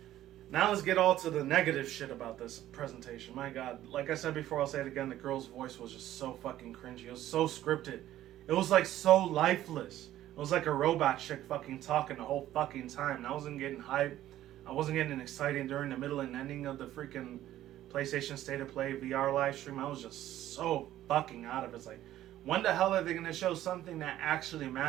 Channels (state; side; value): quieter; left; 13.4 dB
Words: Now let's get all to the negative shit about this presentation. My God, like I said before, I'll say it again, the girl's voice was just so fucking cringy. It was so scripted. It was like so lifeless. It was like a robot chick fucking talking the whole fucking time. And I wasn't getting hyped. I wasn't getting excited during the middle and ending of the freaking PlayStation State of Play VR live stream. I was just so fucking out of it. It's like, when the hell are they going to show something that actually